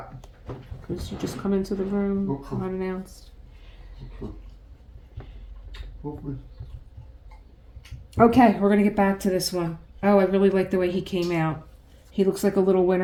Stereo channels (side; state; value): both; identical; correlation 1.00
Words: Because you just come into the room Okay. unannounced. Foofy. Okay, we're going to get back to this one. Oh, I really like the way he came out. He looks like a little